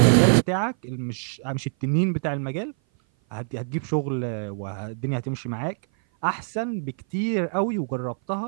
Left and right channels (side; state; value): left; silent; 57 dB below the other